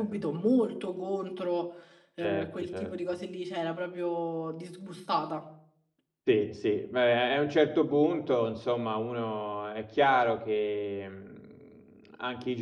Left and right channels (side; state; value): both; identical; correlation 1.00